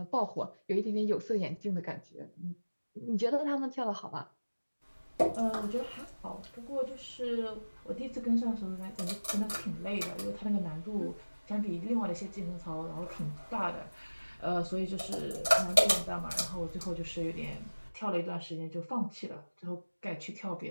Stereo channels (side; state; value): both; inverted; correlation -1.00